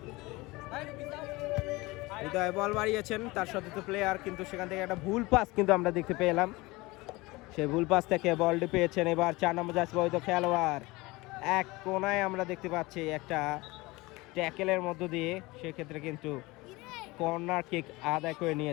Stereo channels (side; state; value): right; quieter; 22.1 dB